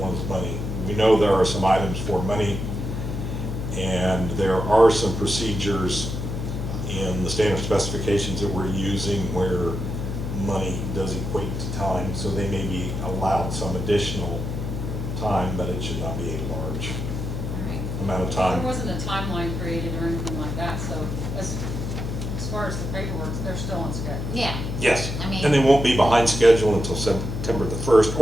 one is money. We know there are some items for money, and there are some procedures in the standard specifications that we're using where money does equate to time, so they may be allowed some additional time, but it should not be a large Alright. amount of There time. wasn't a timeline created or anything like that, so as far as the paperwork, they're still on schedule. Yeah, Yes, I mean- and they won't be behind schedule until September the 1st,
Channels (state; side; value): noise; left; hum, 4 dB below the sound